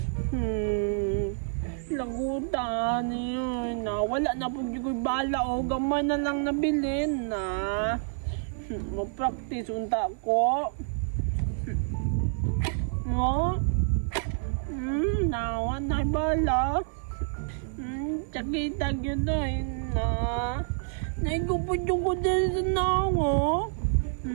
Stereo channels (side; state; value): left; silent; 57 dB below the other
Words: Lagutan yun. Wala na po yung bala, oh. Gamay na lang nabilin, na. Mag-practice unta ko. No? Nawan na bala. Sakitag yun na. Naigupod yung ko din sa nawa.